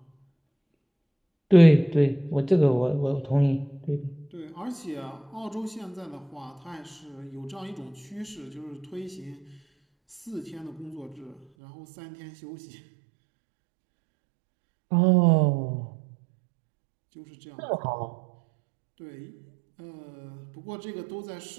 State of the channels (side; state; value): left; drops out; at 11.5 s